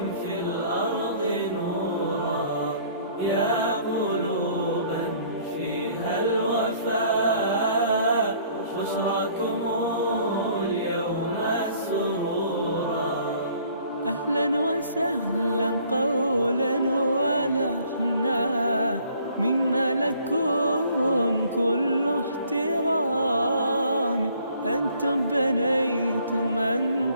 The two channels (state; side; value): inverted; both; correlation -0.58